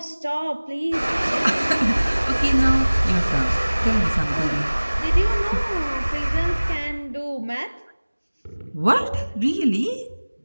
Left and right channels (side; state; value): both; inverted; correlation -1.00